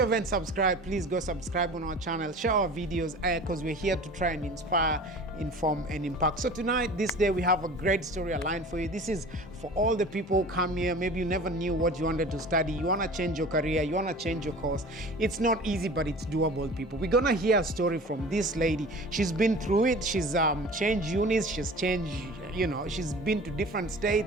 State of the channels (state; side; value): normal; both; correlation 0.41